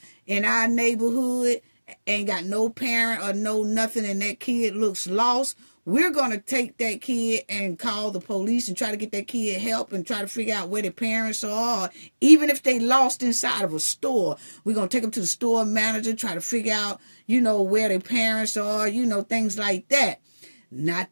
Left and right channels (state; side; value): inverted; both; correlation -1.00